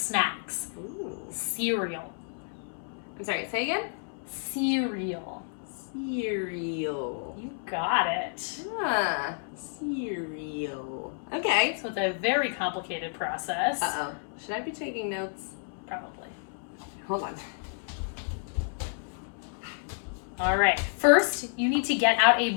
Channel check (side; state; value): right; silent; 58 dB below the other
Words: Ooh. Cereal. I'm sorry, say again? Cereal. Cereal. You got it. Ah, cereal. Okay. So it's a very complicated process. Uh-oh. Should I be taking notes? Probably. Hold on. All right. First, you need to get out a